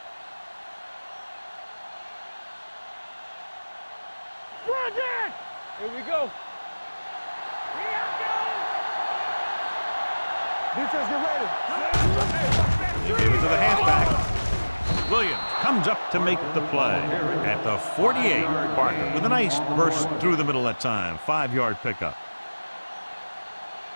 Here we go. Defense, get ready. They give it to the halfback. Williams comes up to make the play at the 48. Barker with a nice burst through the middle that time. 5-yard pickup.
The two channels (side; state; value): both; inverted; correlation -1.00